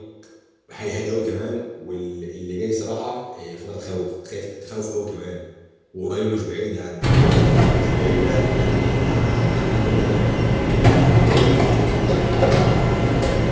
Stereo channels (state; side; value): identical; both; correlation 1.00